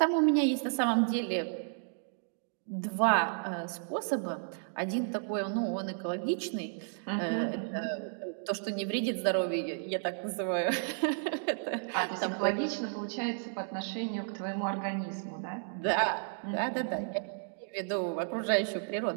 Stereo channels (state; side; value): silent; left; digital silence